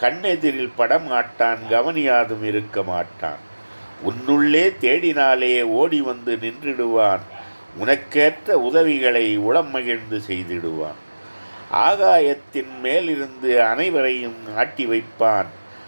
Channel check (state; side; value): inverted; both; correlation -1.00